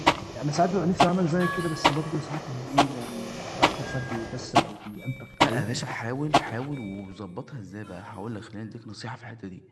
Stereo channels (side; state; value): both; identical; correlation 1.00